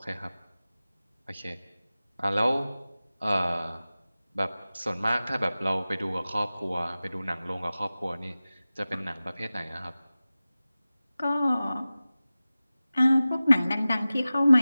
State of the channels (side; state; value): both; inverted; correlation -0.97